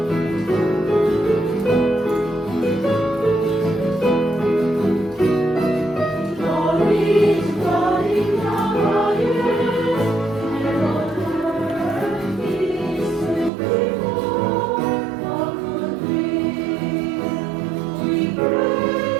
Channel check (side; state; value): left; drops out; at 13.5 s